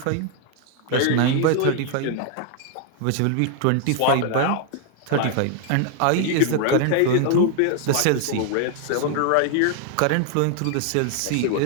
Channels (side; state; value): both; different; correlation 0.00